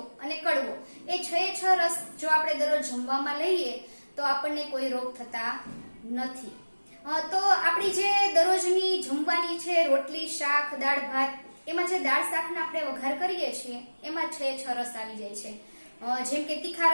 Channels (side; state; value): both; inverted; correlation -1.00